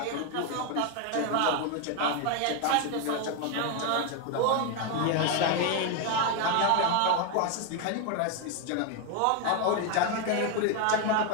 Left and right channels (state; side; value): different; both; correlation 0.01